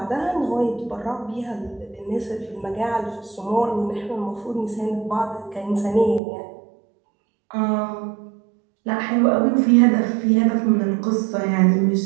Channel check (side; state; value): left; drops out; at 6.2 s